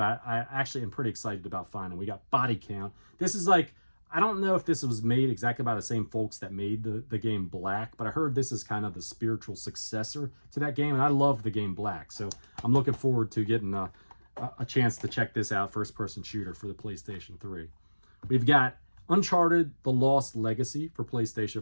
I actually am pretty excited about finding. We got Body Count. This is like, I don't know if this was made exactly by the same folks that made the game Black, but I heard this is kind of the spiritual successor to that game, and I love the game Black. So I'm looking forward to getting a chance to check this out, first-person shooter for the PlayStation 3. We've got Uncharted: The Lost Legacy for PlayStation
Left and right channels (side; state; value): both; inverted; correlation -1.00